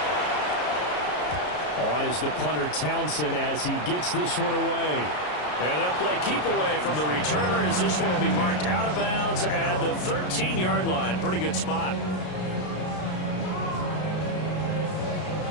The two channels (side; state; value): right; late; 33 ms